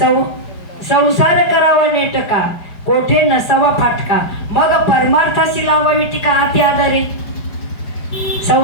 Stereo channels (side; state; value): right; late; 5.1 ms